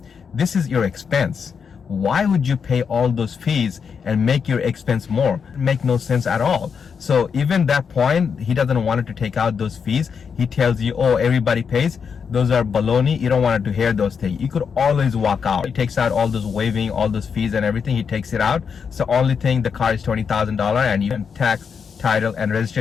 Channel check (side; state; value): right; quieter; 6.4 dB